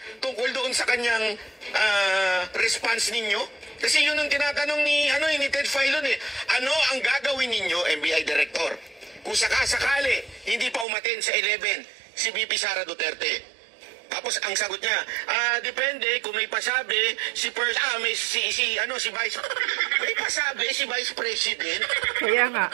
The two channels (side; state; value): left; drops out; at 10.9 s